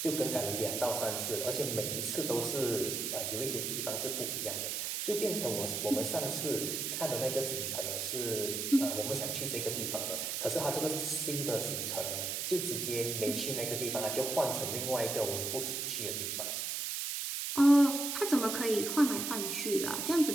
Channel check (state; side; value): noise; right; hiss, 2 dB below the sound